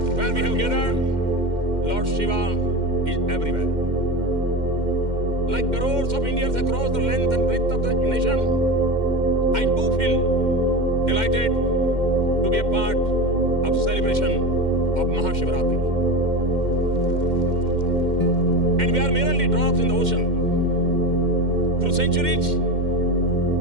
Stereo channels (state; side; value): late; left; 2.1 ms